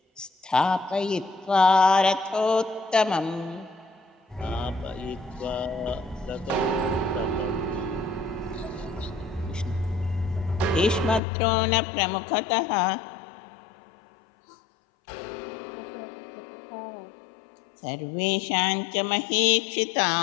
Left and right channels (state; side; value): drops out; right; at 11.2 s